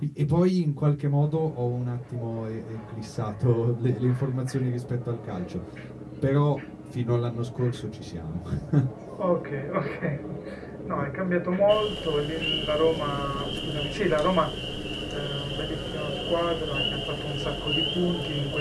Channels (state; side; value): identical; both; correlation 1.00